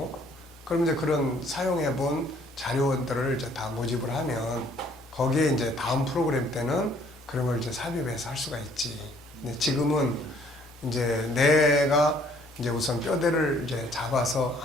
그럼 이제 그런 사용해본 자료들을 이제 다 모집을 하면, 거기에 이제 다음 프로그램 때는 그런 걸 이제 삽입해서 할 수가 있지. 근데 지금은 이제 내가 이제 우선 뼈대를 이제 잡아서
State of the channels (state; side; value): normal; both; correlation 0.61